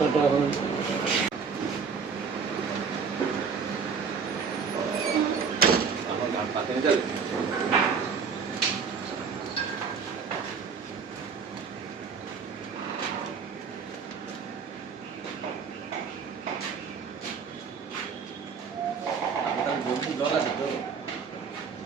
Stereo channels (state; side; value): quieter; left; 5.8 dB